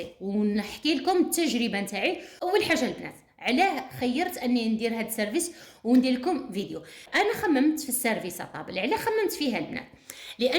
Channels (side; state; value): both; identical; correlation 1.00